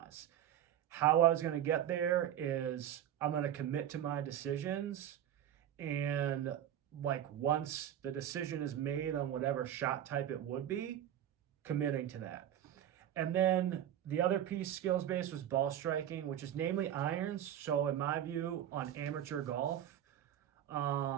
How I was going to get there is I'm going to commit to my decisions, and like once the decision is made on whatever shot type it would be, committing to that. And then the other piece, skills based, was ball striking, which is namely irons. So in my view, on amateur golf,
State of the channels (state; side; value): quieter; left; 10.8 dB